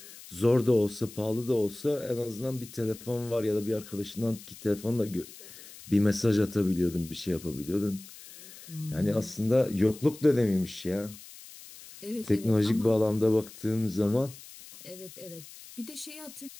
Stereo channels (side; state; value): left; noise; hiss, 17 dB below the sound